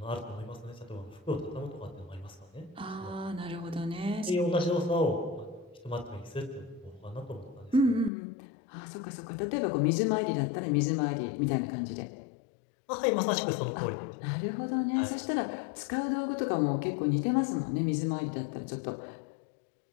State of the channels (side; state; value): right; drops out; at 8.1 s